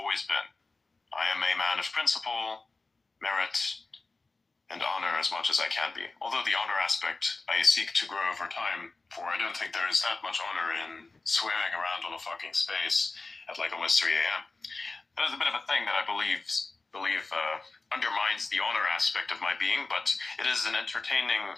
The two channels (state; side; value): quieter; right; 3.6 dB